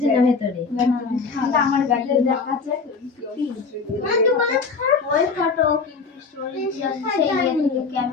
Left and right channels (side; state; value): right; quieter; 4.8 dB